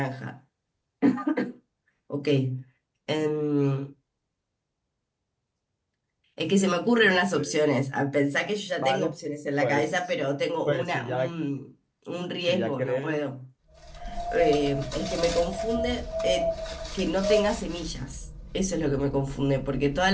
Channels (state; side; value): identical; both; correlation 1.00